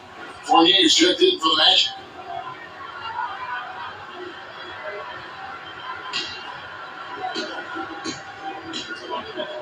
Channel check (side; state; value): both; identical; correlation 1.00